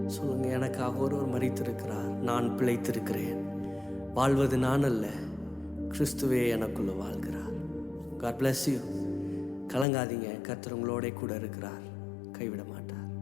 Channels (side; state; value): right; drops out; at 9.9 s